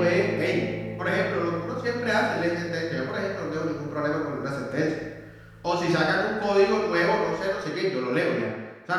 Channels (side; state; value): both; identical; correlation 1.00